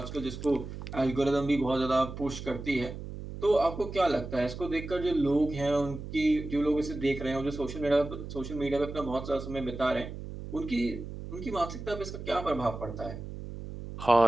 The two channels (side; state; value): right; noise; hum, 9 dB below the sound